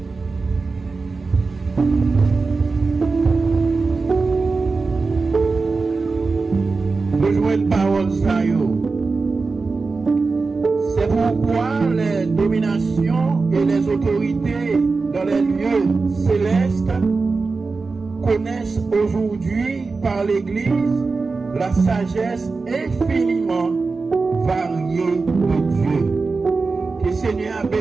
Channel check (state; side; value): quieter; left; 4.1 dB